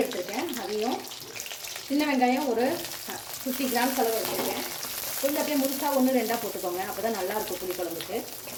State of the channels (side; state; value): both; identical; correlation 1.00